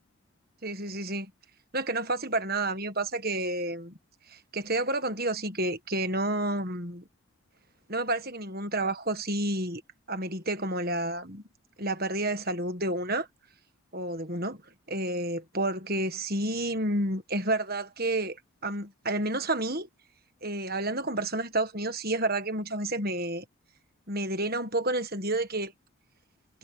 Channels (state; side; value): normal; both; correlation 0.03